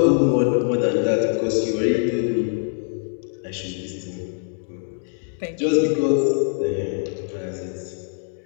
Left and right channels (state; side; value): silent; right; digital silence